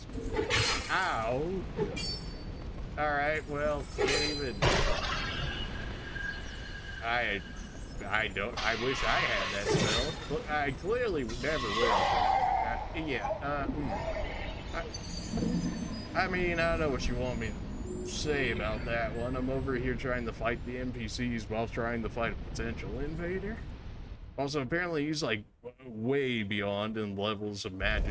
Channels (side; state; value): both; identical; correlation 1.00